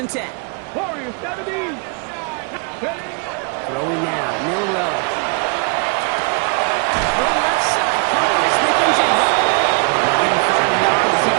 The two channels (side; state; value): left; quieter; 35.2 dB